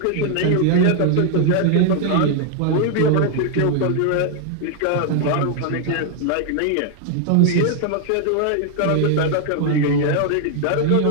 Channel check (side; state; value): both; different; correlation 0.00